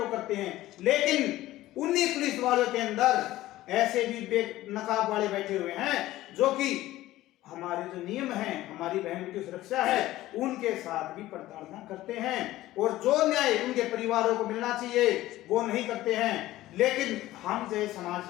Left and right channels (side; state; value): right; quieter; 15.9 dB